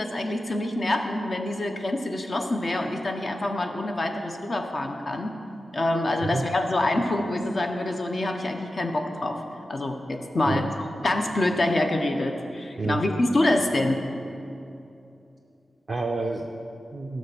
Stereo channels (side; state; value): both; normal; correlation 0.92